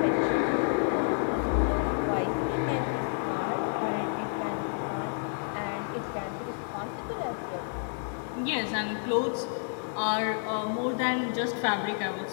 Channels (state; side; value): silent; right; digital silence